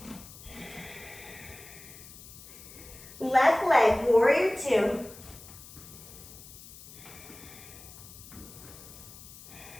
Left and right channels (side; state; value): left; noise; hiss, 17 dB below the sound